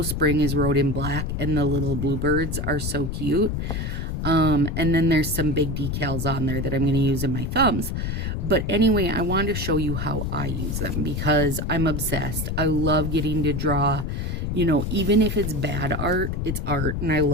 Spring is wrote in black, and the little bluebirds are so cute. And then there's some big decals on there that I'm going to use in my thumbs. But anyway, I wanted to show you how I use them, because I'm obsessed. I love getting to draw, you know, even if it's bad art, it's art, and I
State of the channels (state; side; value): noise; left; rumble, 2 dB below the sound